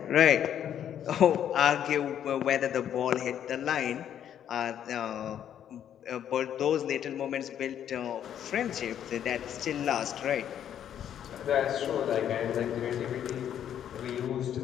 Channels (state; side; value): quieter; right; 9.8 dB